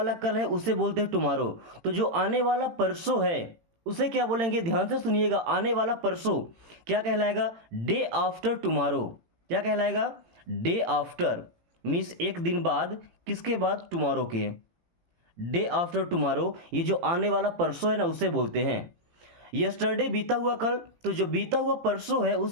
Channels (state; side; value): late; left; 18 ms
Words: कल है उसे बोलते हैं टुमारो। तो जो आने वाला परसों है उसे क्या बोलेंगे, ध्यान से सुनिएगा। आने वाला परसों क्या कहलाएगा, डे आफ्टर टुमारो। क्या कहलाएगा, डे आफ्टर मीन्स एक दिन बाद, किसके बाद, टुमारो के। डे आफ्टर टुमारो, ये जो आने वाला परसों है ना उसे बोलते हैं। यस्टरडे बीता हुआ कल, तो जो बीता हुआ परसों है